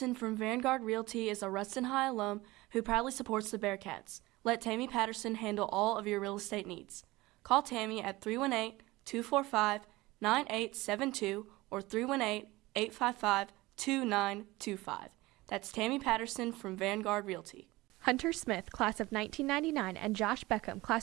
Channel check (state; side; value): quieter; left; 20.1 dB